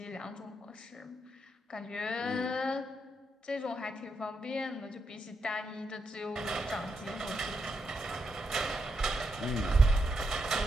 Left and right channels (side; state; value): both; normal; correlation 0.82